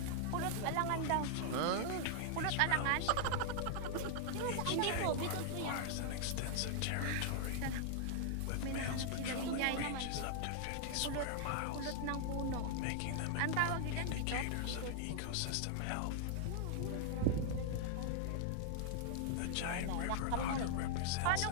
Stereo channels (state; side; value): different; both; correlation 0.00